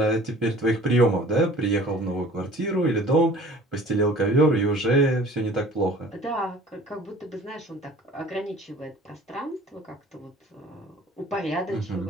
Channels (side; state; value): both; normal; correlation 0.47